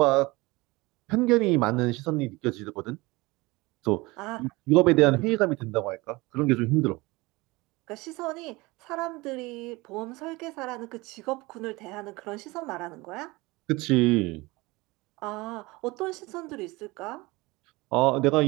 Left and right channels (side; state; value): left; quieter; 22.7 dB